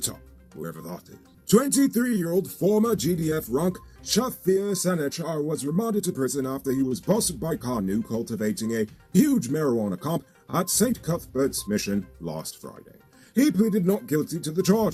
wherever that is. 23-year-old former GDF rank Shafir Sanechar was remanded to prison after he was busted by Kanu cultivating a huge marijuana camp at St. Cuthbert's Mission last Friday. He pleaded not guilty to the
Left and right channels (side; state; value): both; identical; correlation 1.00